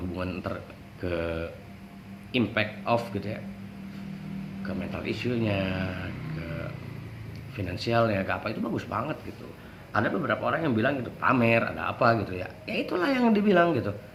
ke impact of gitu ya, ke mental issue-nya, ke finansialnya, ke apa, itu bagus banget gitu. Ada beberapa orang yang bilang gitu pamer ada apa gitu ya, ya itulah yang dibilang gitu,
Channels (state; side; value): identical; both; correlation 1.00